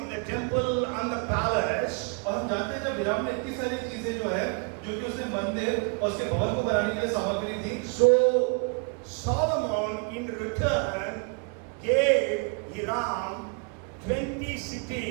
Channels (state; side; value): quieter; left; 35.8 dB